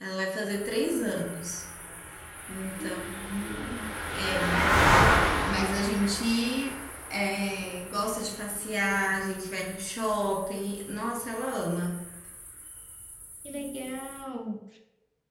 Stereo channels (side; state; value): both; identical; correlation 1.00